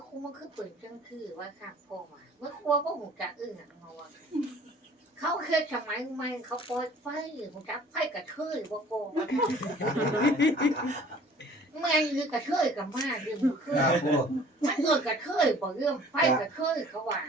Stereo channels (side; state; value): both; normal; correlation 0.51